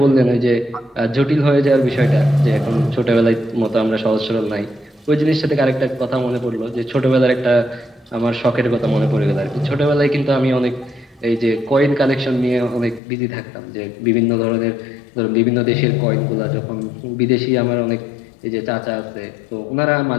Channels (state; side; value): drops out; right; at 13.0 s